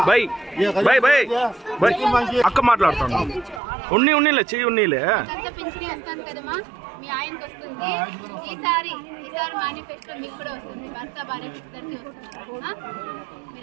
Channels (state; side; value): drops out; left; at 3.6 s